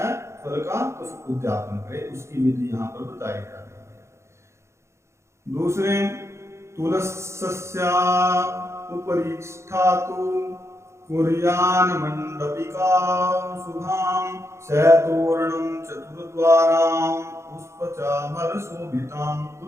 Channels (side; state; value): left; late; 0.13 ms